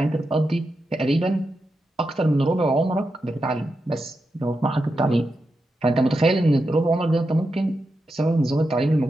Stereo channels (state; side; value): normal; both; correlation 0.88